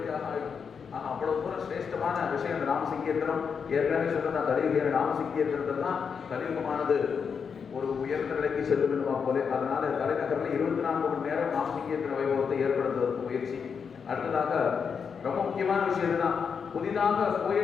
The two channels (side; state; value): right; quieter; 6.3 dB